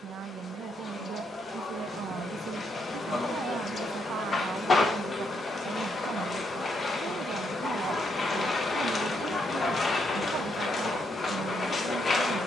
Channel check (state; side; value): normal; both; correlation 0.77